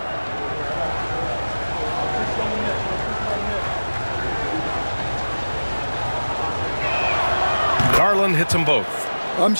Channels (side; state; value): both; inverted; correlation -1.00